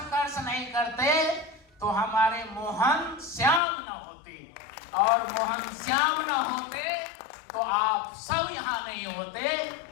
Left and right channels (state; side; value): drops out; right; at 3.6 s